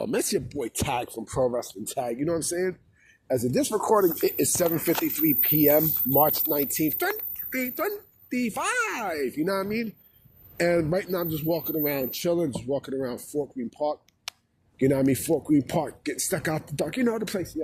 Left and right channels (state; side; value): identical; both; correlation 1.00